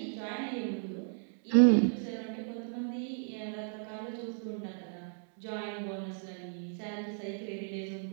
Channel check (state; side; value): silent; left; digital silence